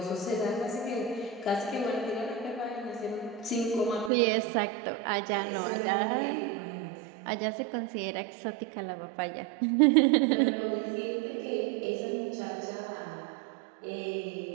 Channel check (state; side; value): drops out; left; at 4.1 s